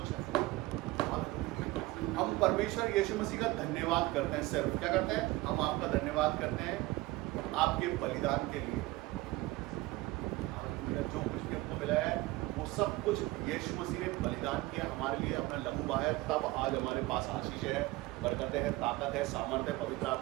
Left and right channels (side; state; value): left; quieter; 19.7 dB